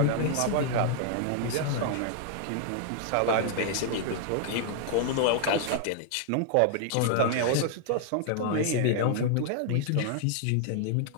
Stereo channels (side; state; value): both; different; correlation -0.01